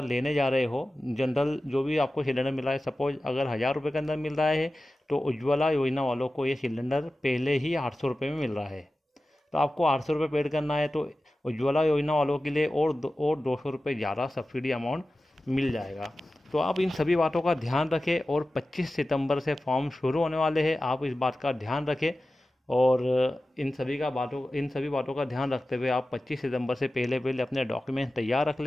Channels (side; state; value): both; normal; correlation 0.95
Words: लेने जा रहे हो, जनरल जो भी आपको सिलेंडर मिल रहा है, सपोज अगर 1000 रुपये के अंदर मिल रहा है, तो उज्ज्वला योजना वालों को ये सिलेंडर पहले ही 800 रुपये में मिल रहा है। तो आपको 800 रुपये पेड करना है, तो उज्ज्वला योजना वालों के लिए और 200 रुपये ज़्यादा सब्सिडी अमाउंट मिल जाएगा। तो आप इन सभी बातों का ध्यान रखें, और 25 सितंबर से फॉर्म शुरू होने वाले हैं, आप इस बात का ध्यान रखें। और इन सभी बातों का ध्यान रखते हुए आप 25 सितंबर से पहले अपने डॉक्यूमेंट तैयार रख